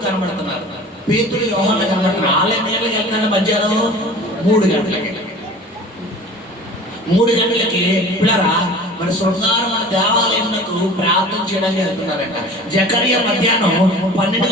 కనబడుతున్నారు. పేతురు, యోహాను కనబడుతున్నారు. వాళ్ళ నీళ్ళకి వెళ్తున్నారు మధ్యాహ్నం 3 గంటలకి. 3 గంటలకి పిల్లరా మన శృంగారం మన దేవాలయంకు ప్రార్థన చేయడానికి వెళ్తున్నారంట. జకర్యా మధ్యాహ్నం 12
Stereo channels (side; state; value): both; normal; correlation 0.42